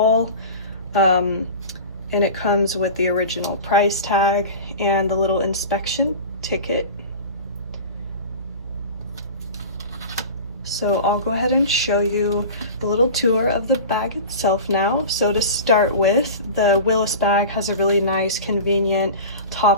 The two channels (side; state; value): both; inverted; correlation -0.34